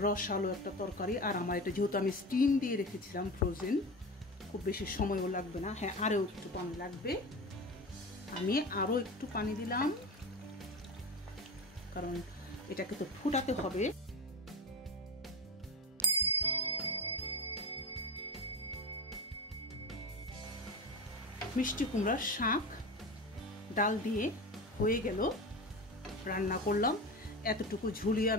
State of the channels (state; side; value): normal; both; correlation 0.25